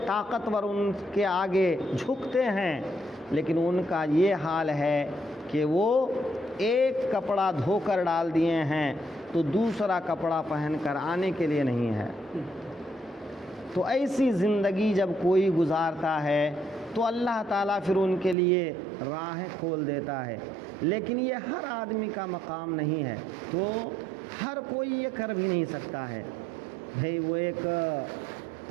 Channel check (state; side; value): drops out; left; at 18.4 s